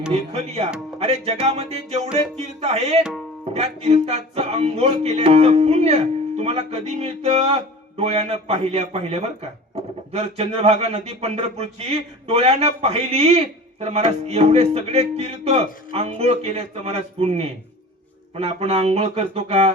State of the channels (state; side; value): normal; both; correlation 0.38